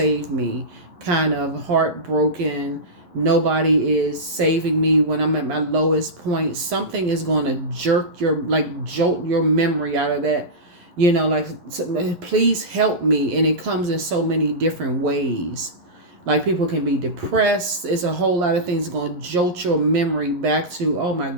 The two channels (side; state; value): left; late; 11 ms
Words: me, kind of heartbroken. Nobody is saving me when I'm at my lowest point. Something is going to jolt your memory out of that. Please help me. And it comes in so many different ways. Like people can be depressed. It's a whole lot of things going to jolt your memory back to, oh my